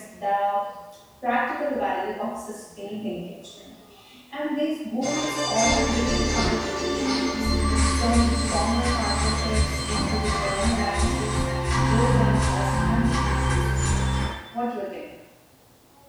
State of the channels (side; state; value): both; identical; correlation 1.00